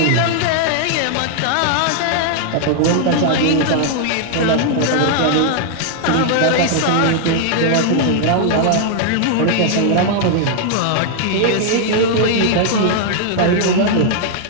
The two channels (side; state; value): both; different; correlation -0.01